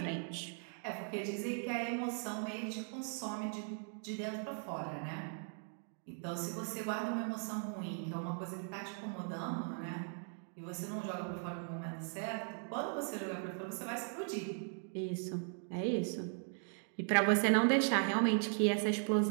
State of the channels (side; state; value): left; silent; 52 dB below the other